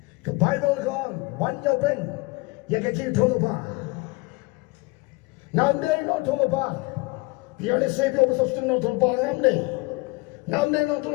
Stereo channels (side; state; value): right; quieter; 25.0 dB